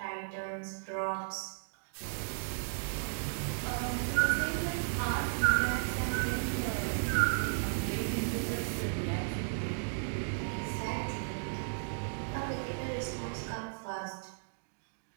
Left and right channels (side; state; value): left; silent; digital silence